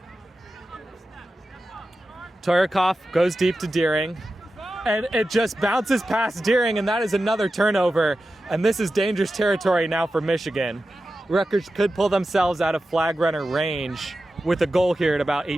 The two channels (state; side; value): normal; both; correlation 0.92